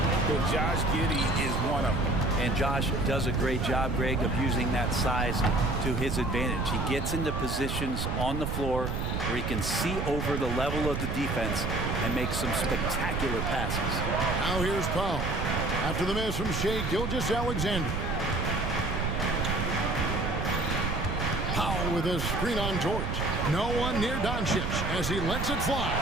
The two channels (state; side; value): noise; right; rumble, 2 dB below the sound